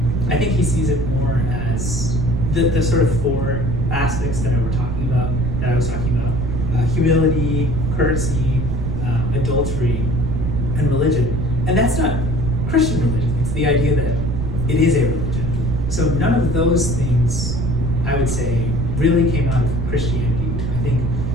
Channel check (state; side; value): noise; right; rumble, 4 dB below the sound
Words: I think he sees it more as the sort of four aspects that I was talking about, humility, courtesy, adultery, and religion. And that's not Christian religion. It's the idea that it is a religion. So none of those things, I would say, really came out of Christianity. I think